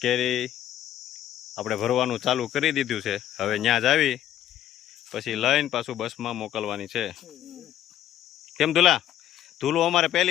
કેરી આપણે ભરવાનું ચાલુ કરી દીધું છે. હવે ત્યાં જ આવી પછી લઈને પાછું બસમાં મોકલવાની છે. કેમ ધુલા? ધુલો અમારે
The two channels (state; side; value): quieter; right; 12.0 dB